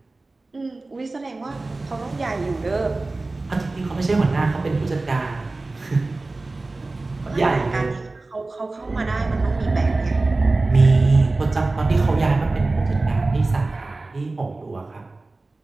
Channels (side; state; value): left; quieter; 3.2 dB